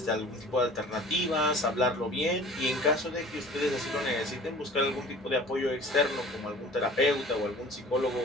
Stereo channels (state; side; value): normal; both; correlation 0.45